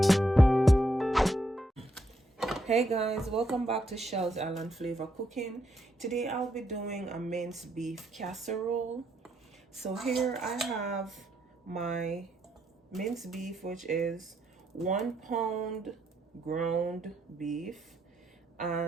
Hey guys, welcome back to Shell's Island Flavor Cooking. Today I'll be doing a minced beef casserole. So here I have my minced beef, which is 1 pound ground beef,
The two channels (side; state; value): both; normal; correlation 0.77